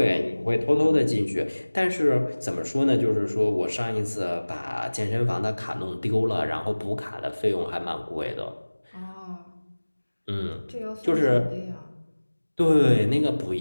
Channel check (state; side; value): inverted; both; correlation -1.00